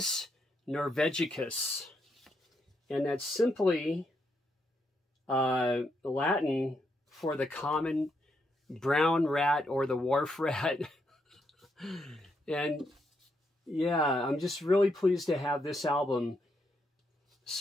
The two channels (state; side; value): normal; both; correlation 0.79